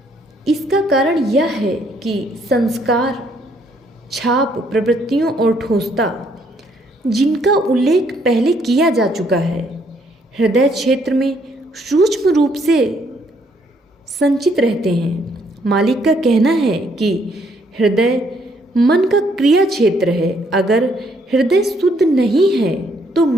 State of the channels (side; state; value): both; normal; correlation 0.69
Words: इसका कारण यह है कि संस्कार, छाप, प्रवृत्तियों और ठोसता, जिनका उल्लेख पहले किया जा चुका है, हृदय क्षेत्र में सूक्ष्म रूप से संचित रहते हैं। मालिक का कहना है कि हृदय मन का क्रिया क्षेत्र है। अगर हृदय शुद्ध नहीं है तो